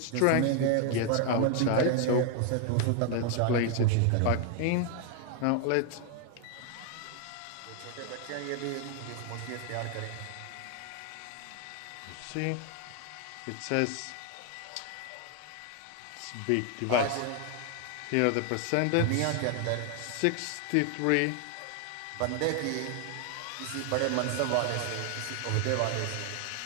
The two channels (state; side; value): different; both; correlation 0.00